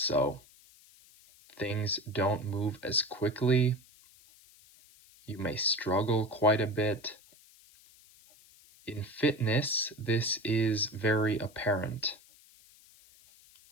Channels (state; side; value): noise; left; hiss, 26 dB below the sound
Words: things don't move as quickly. You may struggle quite a bit. In fitness, this is very apparent.